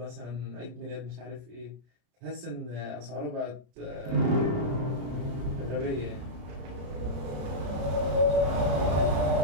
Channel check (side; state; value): left; late; 33 ms